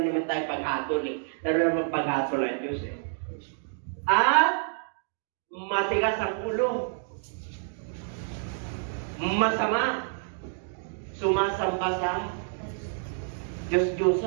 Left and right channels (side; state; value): left; silent; digital silence